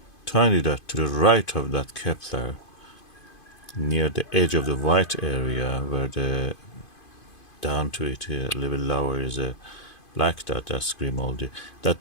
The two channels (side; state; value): right; late; 2.5 ms